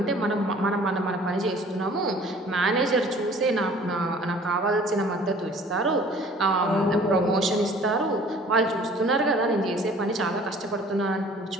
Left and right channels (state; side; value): normal; both; correlation 0.51